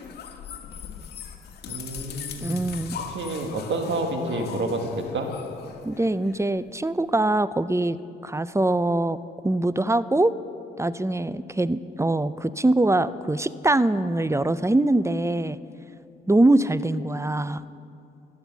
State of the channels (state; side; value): normal; both; correlation 0.83